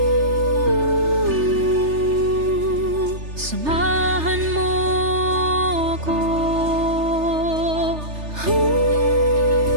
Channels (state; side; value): late; left; 3.3 ms